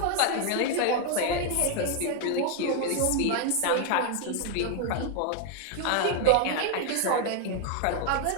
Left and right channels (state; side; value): different; both; correlation 0.00